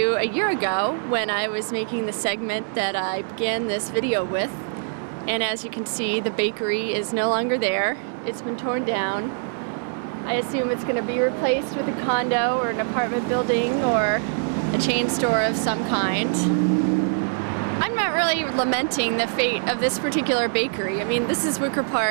a year ago when I was making the segment that I began this video with. And as you can see, the bakery is no longer there. It's been torn down. I assume it's going to be replaced with a condo or an apartment building or a chain store of some kind. I'm not really lamenting the fate of this particular bakery. I mean, this is Wicker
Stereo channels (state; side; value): silent; left; 63 dB below the other